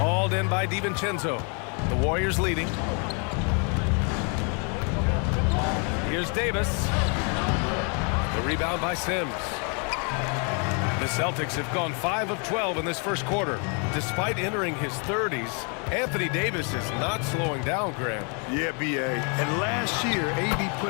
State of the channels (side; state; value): right; quieter; 37.5 dB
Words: in by DiVincenzo. The Warriors leading. Here's Davis. The rebound by Sims. The Celtics have gone 5 of 12 in this first quarter. Despite entering his 30s, Anthony Davis is not slowing down, Graham. Yeah, B.A. And last year, AD